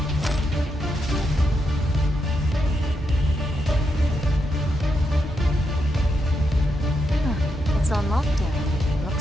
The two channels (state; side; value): normal; both; correlation 0.82